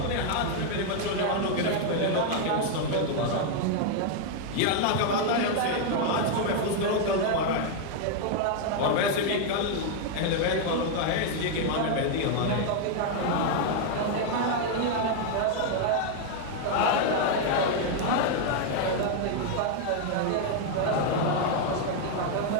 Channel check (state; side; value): different; both; correlation 0.00